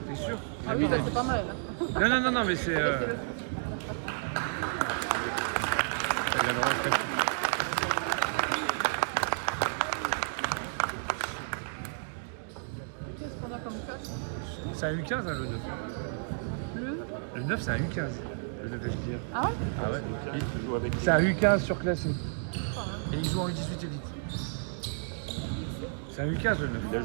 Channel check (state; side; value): silent; left; digital silence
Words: T'es sûr? Il a Ah mis oui, la c'est vis. pas mal. Hein. Non, mais c'est... Il a le rentrer. Qu'est-ce qu'on a comme cash? C'est un U15, hein, le 9. Le 9, c'est un U15. Le 9 SDR. Ah ouais? Ah ouais. C'est un U15 surclassé. Et il joue en U18 Elite. C'est un U15 le 9. Il a